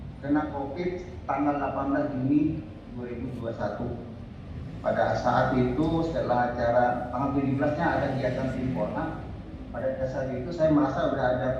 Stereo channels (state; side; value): identical; both; correlation 1.00